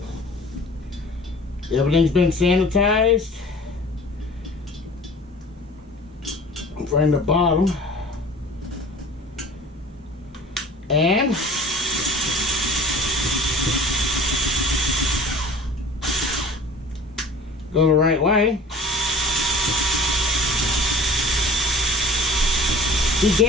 Everything's been sanitized. From the bottom. And go the right way.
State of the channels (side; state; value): both; normal; correlation 0.44